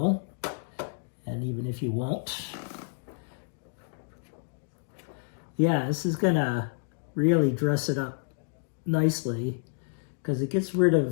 and even if you won't. Yeah, this is gonna really dress it up nicely because it gets rid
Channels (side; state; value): right; silent; digital silence